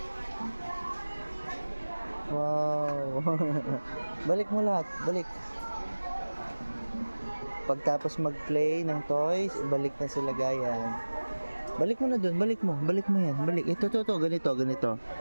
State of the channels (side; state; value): both; inverted; correlation -1.00